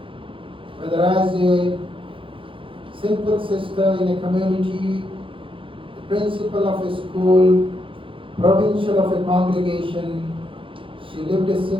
whether as a simple sister in a community, the principal of a school, provincial of a congregation, she lived a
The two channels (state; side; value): late; left; 0.25 ms